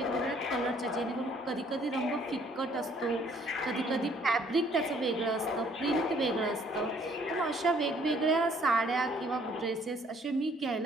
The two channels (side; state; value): both; normal; correlation 0.62